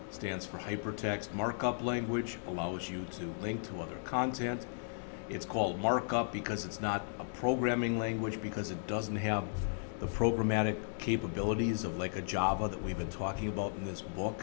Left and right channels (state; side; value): silent; right; digital silence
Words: Stands for Hypertext Markup Language, allows you to link to other content. It's called markup because it's not a programming language, because it doesn't have the programmatic capabilities of like a Java that we've been talking about in this